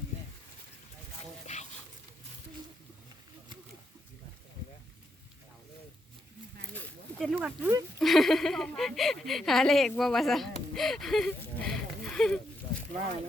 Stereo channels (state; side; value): normal; both; correlation 0.80